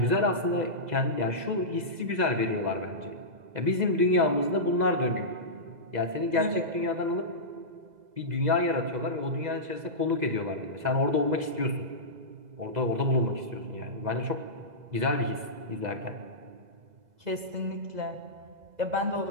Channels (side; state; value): left; late; 2.0 ms